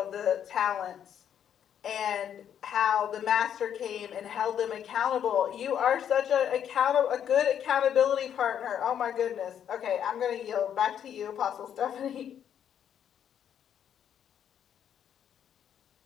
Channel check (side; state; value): right; quieter; 9.2 dB